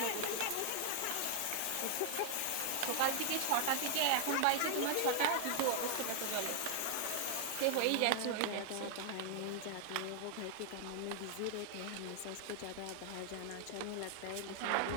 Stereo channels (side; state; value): both; different; correlation 0.00